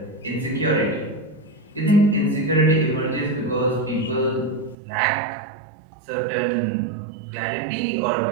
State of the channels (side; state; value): left; drops out; at 4.8 s